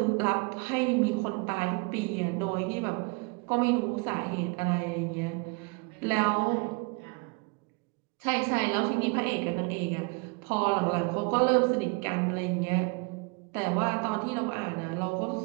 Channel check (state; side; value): quieter; left; 30.0 dB